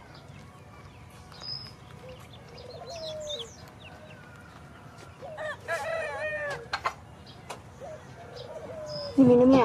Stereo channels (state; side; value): identical; both; correlation 1.00